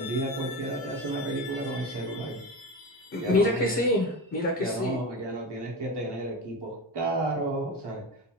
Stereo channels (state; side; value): normal; both; correlation 0.24